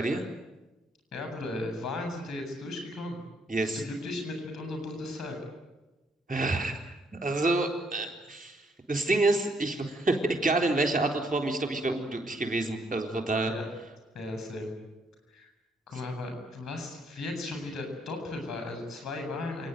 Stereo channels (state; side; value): normal; both; correlation 0.71